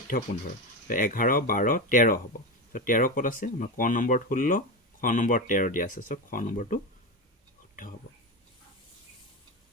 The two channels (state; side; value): normal; both; correlation 0.18